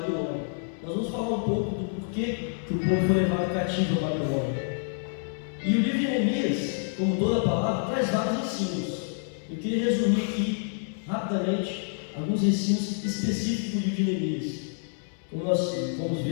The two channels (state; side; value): silent; right; 59 dB below the other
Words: Nós vamos falar um pouco do porquê que o povo foi levado cativo a Babilônia. E o livro de Neemias, como toda a palavra, traz vários ensinos. Eu queria resumir aqui, rapidamente, alguns ensinos específicos do livro de Neemias. Como nós vamos